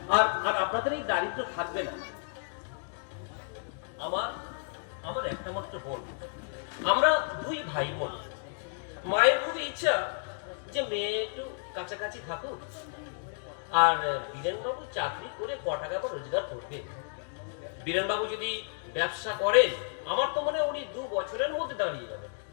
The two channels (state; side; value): silent; right; digital silence